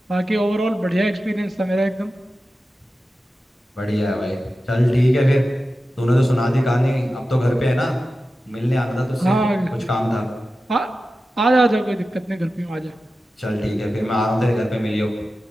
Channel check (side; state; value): both; normal; correlation 0.93